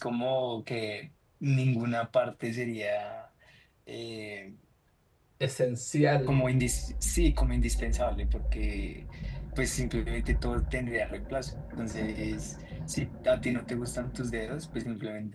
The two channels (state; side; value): identical; both; correlation 1.00